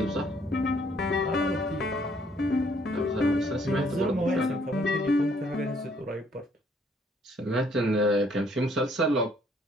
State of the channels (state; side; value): normal; both; correlation 0.65